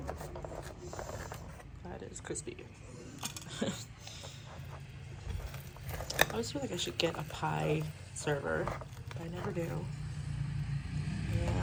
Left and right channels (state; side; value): identical; both; correlation 1.00